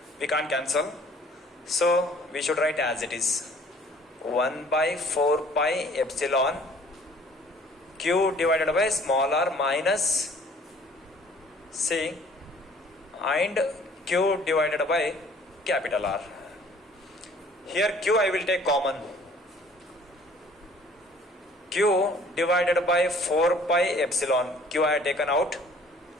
we can't cancel, so we should write as it is. 1 by 4 pi epsilon Q divided by small r minus, see, and Q divided by capital R. Here Q I will take common. Q divided by 4 pi epsilon, Q I have taken out,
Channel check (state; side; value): normal; both; correlation 0.54